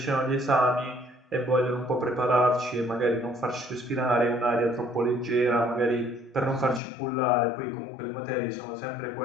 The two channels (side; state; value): right; drops out; at 6.8 s